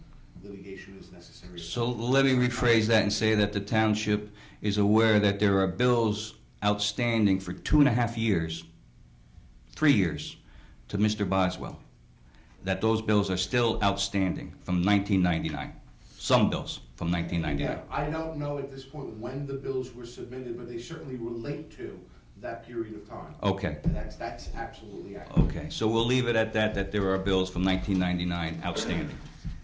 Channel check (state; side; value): identical; both; correlation 1.00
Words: litigation is necessary. So let me rephrase that and say that the township is aware that there are bills outstanding for 2.5 years, 3 years, to Mr. Boswell, that those bills are still outstanding from 1999. Some bills from 1999. Yeah, I don't know at this point when the bills were submitted, but they certainly relate to that period of time. Okay. And that's absolutely accurate. Okay, so we'll leave it at that, that there are bills from 1999 outstanding.